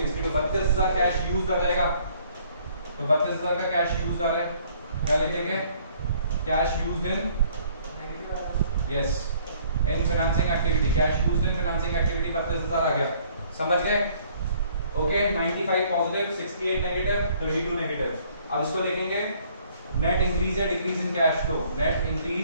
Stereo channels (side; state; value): both; inverted; correlation -0.60